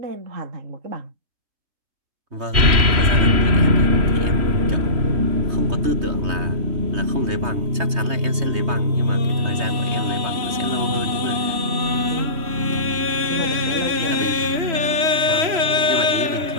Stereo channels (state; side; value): late; left; 3.0 ms